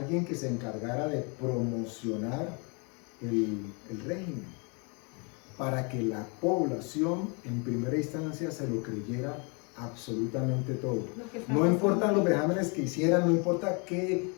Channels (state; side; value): quieter; right; 34.2 dB